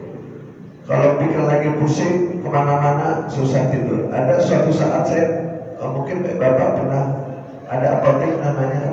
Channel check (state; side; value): identical; both; correlation 1.00